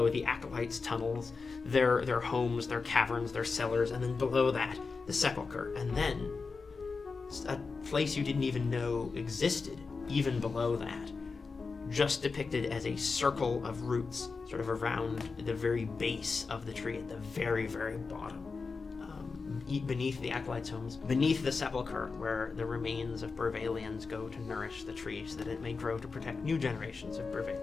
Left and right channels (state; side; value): quieter; right; 4.5 dB